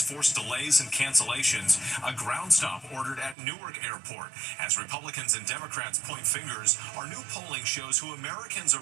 force delays and cancellations. A ground stop ordered at Newark Airport. As Republicans and Democrats point fingers, our new polling shows who Americans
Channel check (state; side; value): drops out; left; at 3.4 s